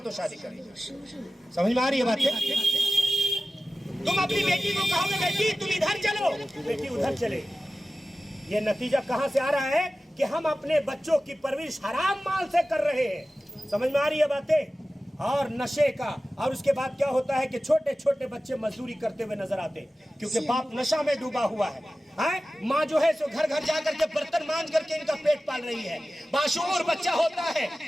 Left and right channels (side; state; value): both; normal; correlation 0.95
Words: تو شادی کریں گے۔ سمجھ میں آ رہی ہے بات؟ تم اپنی بیٹی کو کہو گے بیٹی تم ادھر چلو، بیٹی ادھر چلے۔ یہ نتیجہ کہاں سے آ رہا ہے کہ ہم اپنے بچوں کی پرورش حرام مال سے کر رہے ہیں۔ سمجھ میں آ رہی ہے باتیں؟ اور نشے کا، اور اس کے بعد کیا ہوتا ہے کہ چھوٹے چھوٹے بچے مزدوری کرتے ہوئے نظر آتے ہیں کیونکہ باپ نشہ میں ڈوبا ہوا ہے۔ ماں جو ہے سو گھر گھر جا کر کے برتن مانج کر کے ان کا پیٹ پال رہی ہے، باشعور بچہ ہوتا ہے۔